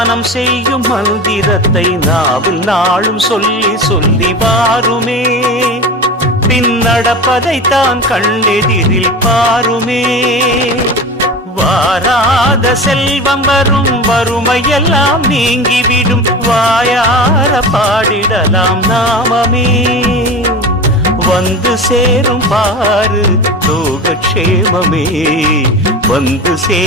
செய்யும் மந்திரத்தை நாவில் நாளும் சொல்லி சொல்லி வாருமே. பின்னடப்பதைத்தான் கண்ணெதிரில் பாருமே. வாராத செல்வம் வரும், வறுமையெல்லாம் நீங்கிவிடும், வாயார பாடிடலாம் நாமமே. வந்து சேரும் பாரு லோகக்ஷேமமே, வந்து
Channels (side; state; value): both; normal; correlation 0.29